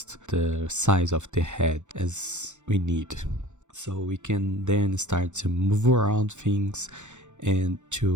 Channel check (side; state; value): left; late; 0.84 ms